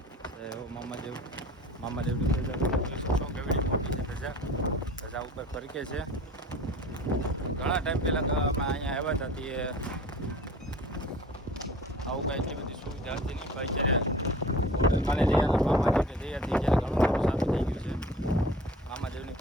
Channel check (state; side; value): normal; both; correlation 0.44